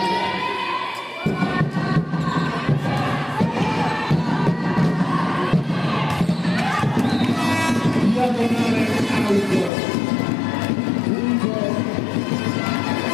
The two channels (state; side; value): drops out; right; at 9.7 s